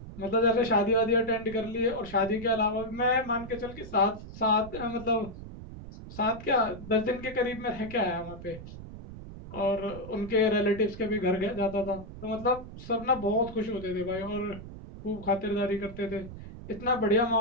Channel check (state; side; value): noise; right; rumble, 13 dB below the sound